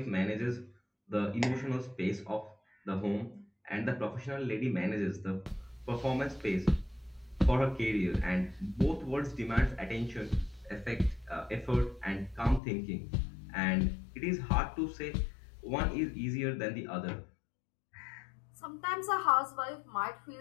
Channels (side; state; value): right; drops out; at 12.6 s